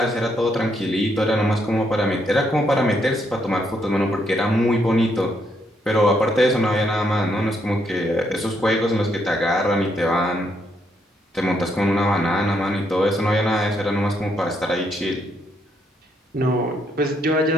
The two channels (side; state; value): both; normal; correlation 0.74